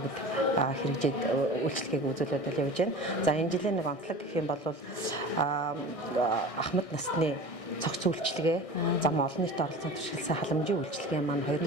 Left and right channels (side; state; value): right; late; 1.6 ms